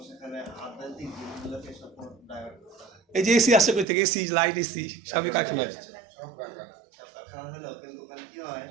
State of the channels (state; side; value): drops out; left; at 3.9 s